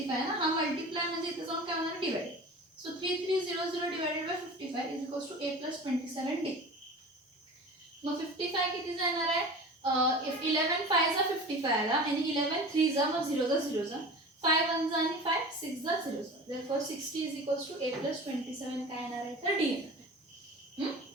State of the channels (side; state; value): both; normal; correlation 0.36